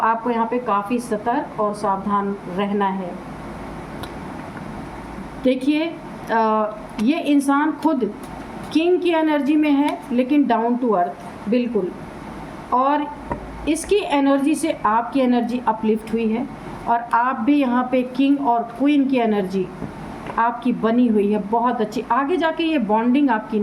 यहाँ पे काफ़ी सतर्क और सावधान रहना है। देखिए ये इंसान खुद किंग की एनर्जी में है लेकिन डाउन टू अर्थ बिल्कुल, और इसकी एनर्जी से आपकी एनर्जी अपलिफ्ट हुई है, और आप भी यहाँ पे किंग और क्वीन की एनर्जी आपकी बनी हुई है बहुत अच्छी। आगे जाके ये बॉन्डिंग आपकी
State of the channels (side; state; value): both; identical; correlation 1.00